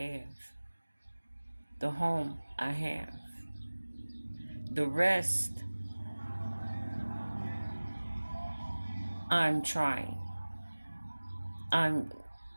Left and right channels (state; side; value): inverted; both; correlation -1.00